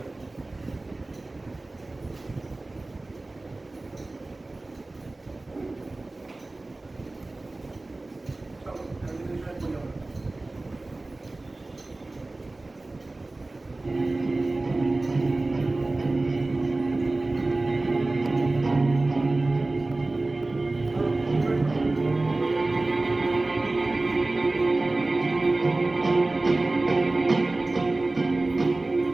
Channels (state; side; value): quieter; left; 3.0 dB